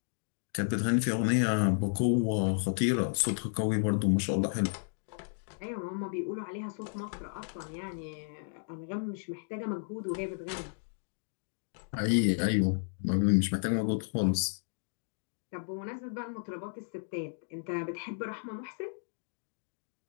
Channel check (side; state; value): right; silent; digital silence